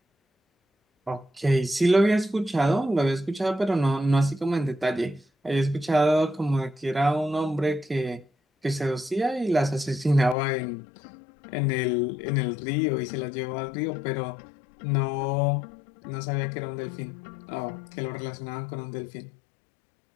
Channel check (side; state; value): right; drops out; at 10.4 s